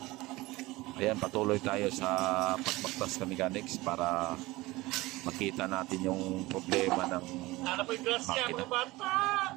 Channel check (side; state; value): left; quieter; 20.2 dB